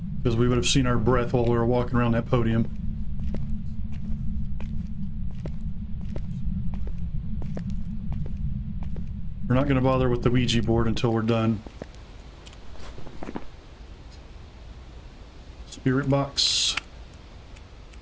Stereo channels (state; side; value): identical; both; correlation 1.00